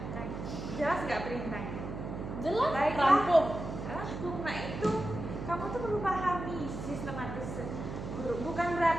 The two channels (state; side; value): noise; right; hum, 7 dB below the sound